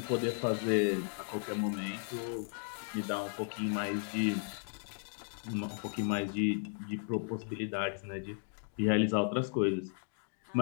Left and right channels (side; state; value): right; silent; 54 dB below the other